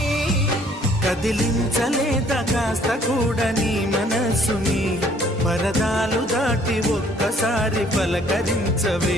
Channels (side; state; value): both; normal; correlation 0.61